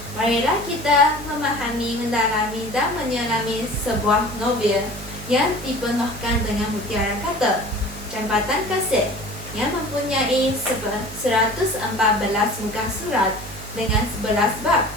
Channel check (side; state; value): right; noise; hum, 13 dB below the sound